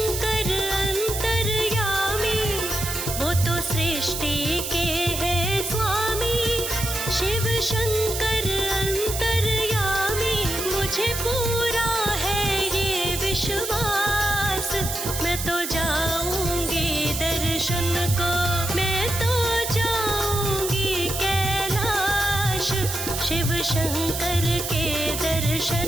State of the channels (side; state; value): right; noise; hiss, 5 dB below the sound